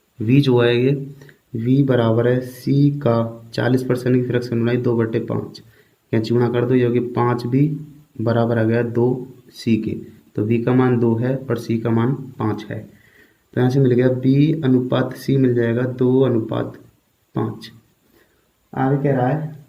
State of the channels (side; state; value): both; identical; correlation 1.00